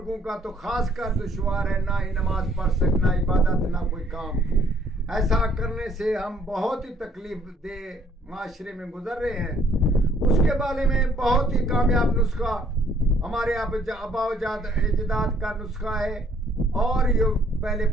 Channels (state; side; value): normal; both; correlation 0.64